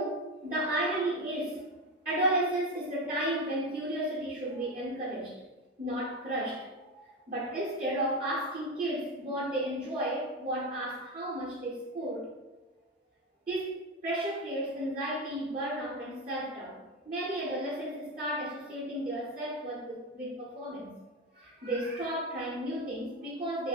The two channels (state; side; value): normal; both; correlation 0.18